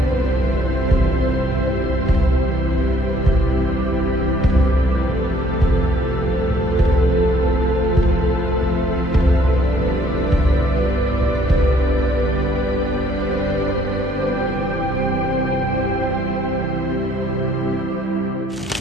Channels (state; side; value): normal; both; correlation 0.61